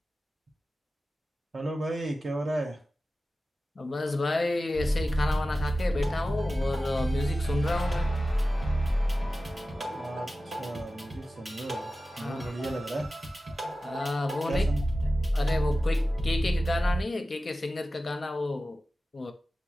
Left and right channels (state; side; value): normal; both; correlation 0.95